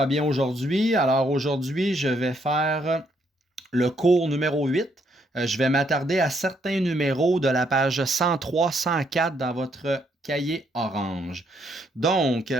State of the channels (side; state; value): both; normal; correlation 0.72